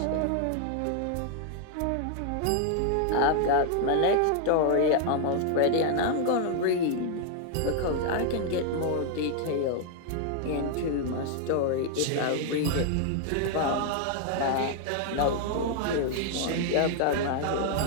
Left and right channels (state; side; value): different; both; correlation 0.00